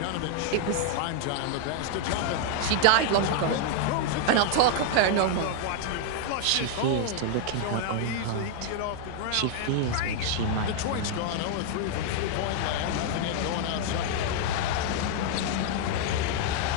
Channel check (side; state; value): both; different; correlation 0.00